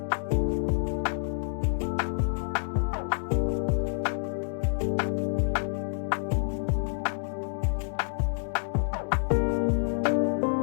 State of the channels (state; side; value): silent; right; digital silence